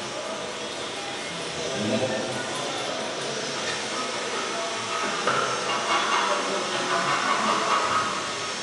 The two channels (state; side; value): identical; both; correlation 1.00